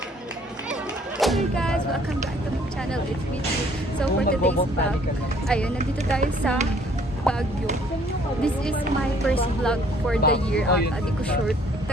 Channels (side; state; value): both; normal; correlation 0.60